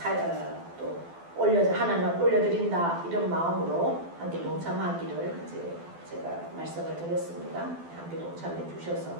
또 하나는 올려드린다 이런 마음으로 함께 동참하기를 이제 제가 말씀을 드렸습니다. 함께 동참해 주셔서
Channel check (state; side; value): late; left; 12 ms